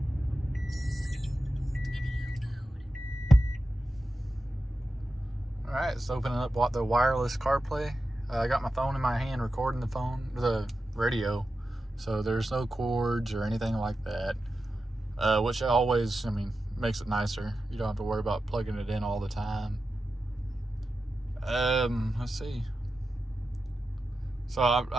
Alright, it's opening up the wireless CarPlay. I got my phone in my hand recording the radio, so there's no cords or anything like that. Which always, makes it nicer. You don't have to worry about plugging it in all the time. Let's see. So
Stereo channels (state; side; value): normal; both; correlation 0.91